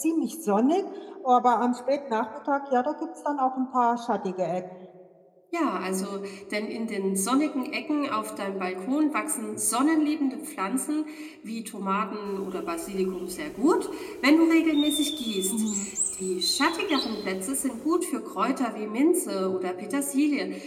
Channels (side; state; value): both; identical; correlation 1.00